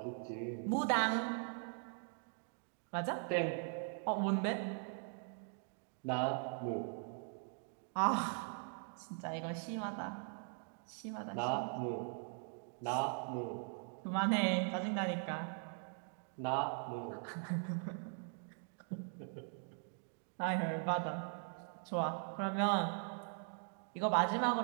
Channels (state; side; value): silent; left; 51 dB below the other